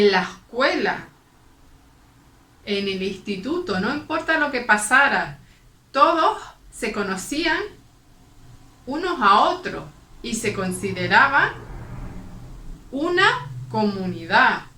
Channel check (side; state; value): both; identical; correlation 1.00